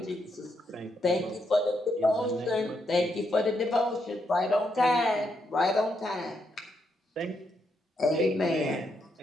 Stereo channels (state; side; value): normal; both; correlation 0.79